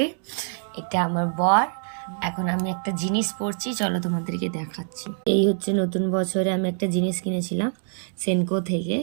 এটা আমার বর। এখন আমি একটা জিনিস পরছি, চলো তোমাদেরকে দেখাচ্ছি। এই হচ্ছে নতুন বছরে আমি একটা জিনিস কিনেছিলাম সেনকো থেকে,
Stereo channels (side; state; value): left; silent; digital silence